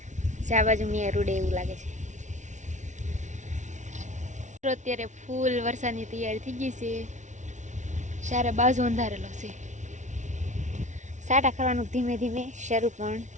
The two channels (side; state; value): left; late; 0.35 ms